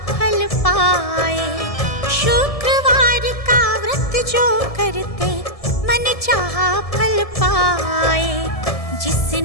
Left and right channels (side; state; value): right; late; 1.7 ms